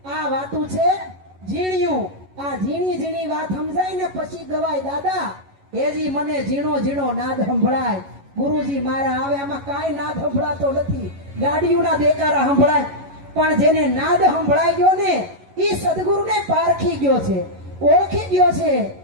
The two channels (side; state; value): left; late; 11 ms